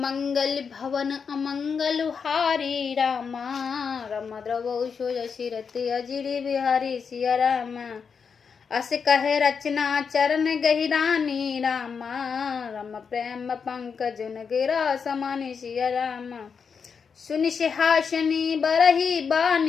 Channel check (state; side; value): quieter; right; 6.1 dB